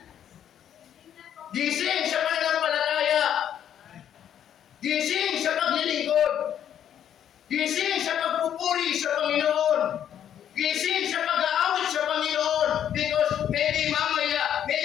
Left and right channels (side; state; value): right; quieter; 9.8 dB